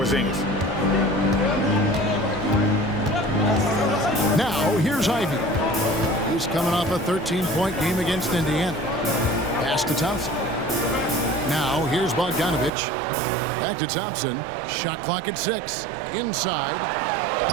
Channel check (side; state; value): left; drops out; at 12.7 s